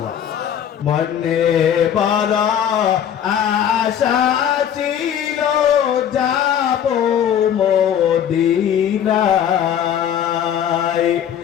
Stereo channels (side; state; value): right; quieter; 9.4 dB